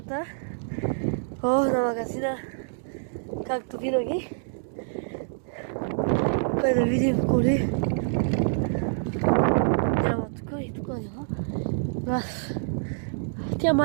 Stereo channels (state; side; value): silent; left; digital silence